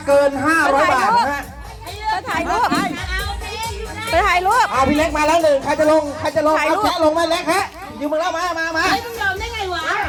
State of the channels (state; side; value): identical; both; correlation 1.00